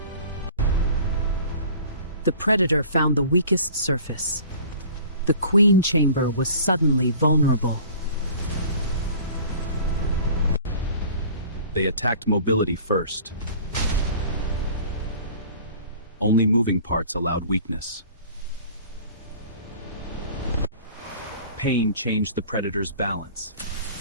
The predator found the weakest surface. The queen chamber was suddenly vulnerable. They attacked mobility first. Only moving parts allowed weakness. Pain changed the predator's balance.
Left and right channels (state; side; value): inverted; both; correlation -0.46